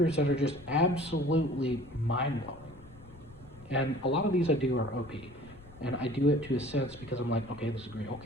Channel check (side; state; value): left; noise; rumble, 21 dB below the sound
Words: that are just absolutely mind blowing. And a lot of these I do are OP. And I do it to a sense because I'm like, okay, this is great,